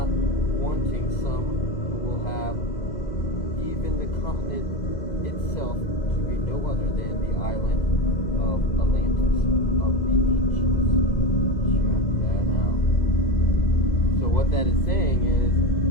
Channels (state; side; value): late; right; 2.0 ms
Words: wanting some who will have even the continent itself to be no other than the island of Atlantis, of the ancients. Check that out. So what that is saying is,